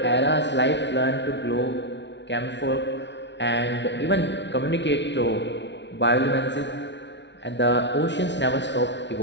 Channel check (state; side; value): late; right; 0.51 ms